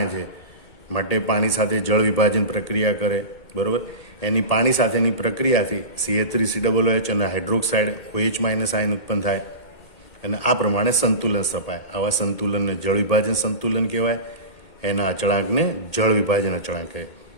છે, માટે પાણી સાથે જળ વિભાજન પ્રક્રિયા કરે, બરોબર. એની પાણી સાથેની પ્રક્રિયાથી CA3COOH અને હાઇડ્રોક્સાઇડ OH- આયન ઉત્પન્ન થાય અને આ પ્રમાણે સંતુલન સ્થપાય. આવા સંતુલનને જળ વિભાજન સંતુલન કહેવાય. એના અચળાંકને જળ વિભાજન અચળાંક કહે.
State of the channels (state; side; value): late; right; 2.2 ms